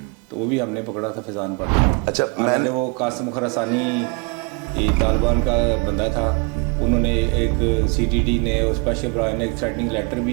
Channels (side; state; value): left; quieter; 33.1 dB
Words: तो वो भी हमने पकड़ा था फैज़ान भट्ट। अच्छा, मैंने वो कासिम खरासानी तालिबान का बंदा था, उन्होंने एक CTD ने और स्पेशल ब्रांच ने एक थ्रेटनिंग लेटर